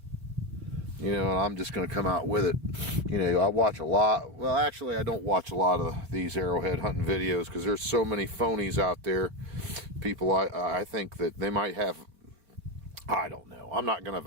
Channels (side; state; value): left; late; 3.9 ms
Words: You know, and I'm just going to come out with it. You know, I watch a lot. Well, actually, I don't watch a lot of these arrowhead hunting videos because there's so many phonies out there. People, I think that they might have, I don't know. I'm not going to